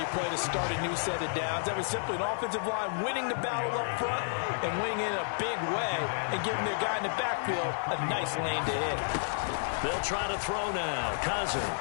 play to start a new set of downs. That was simply an offensive line winning the battle up front and winning in a big way and giving their guy in the backfield a nice lane to hit. They'll try to throw now.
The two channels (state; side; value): silent; right; digital silence